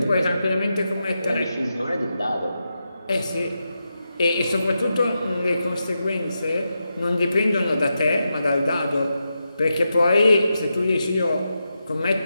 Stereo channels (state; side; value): inverted; both; correlation -0.88